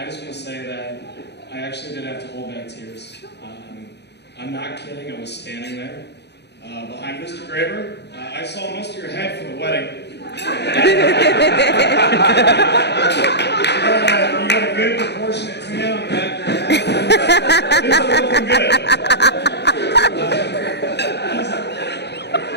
just want to say that I actually did have to hold back tears. I'm not kidding, I was standing there behind Mr. Graber. I saw most of your head for the wedding. You got a good proportionate tan on the back of your head. Things are looking good.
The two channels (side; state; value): right; late; 0.49 ms